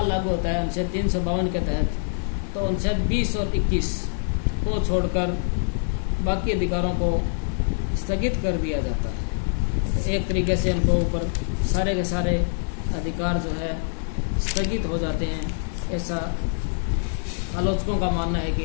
लागू होता है अनुच्छेद 352 के तहत, तो अनुच्छेद 20 और 21 को छोड़कर बाकी अधिकारों को स्थगित कर दिया जाता है। तो एक तरीके से उनको ऊपर सारे के सारे अधिकार जो है स्थगित हो जाते हैं। ऐसा आलोचकों का मानना है कि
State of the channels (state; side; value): silent; right; digital silence